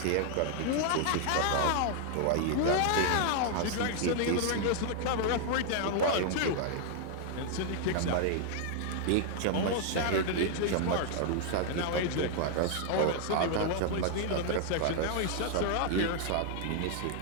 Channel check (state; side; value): different; both; correlation 0.00